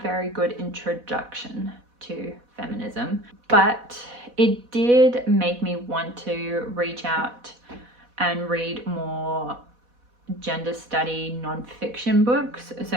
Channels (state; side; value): late; left; 4.1 ms